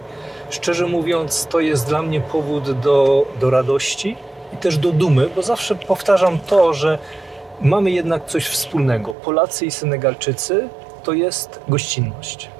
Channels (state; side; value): drops out; left; at 9.2 s